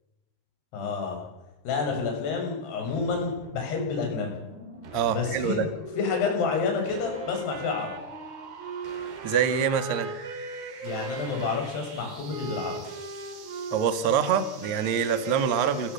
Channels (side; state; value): right; late; 13 ms